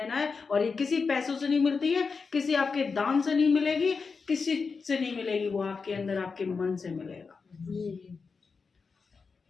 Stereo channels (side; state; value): right; quieter; 4.9 dB